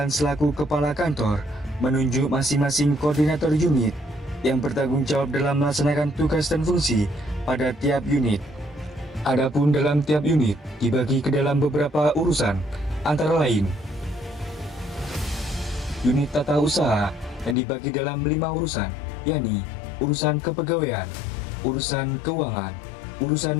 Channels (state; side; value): drops out; right; at 17.6 s